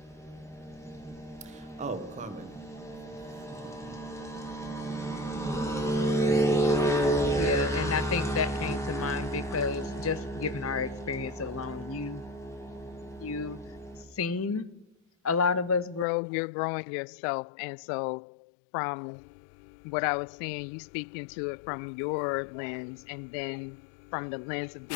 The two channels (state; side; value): drops out; right; at 16.1 s